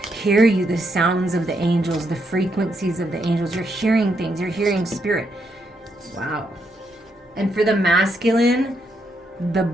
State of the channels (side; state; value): both; normal; correlation 0.78